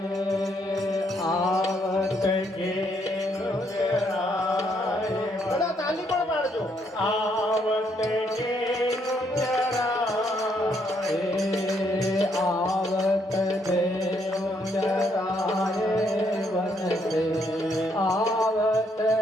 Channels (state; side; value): normal; both; correlation 0.73